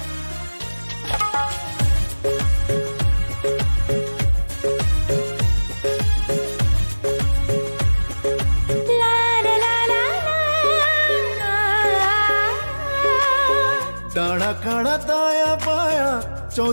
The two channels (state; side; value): inverted; both; correlation -1.00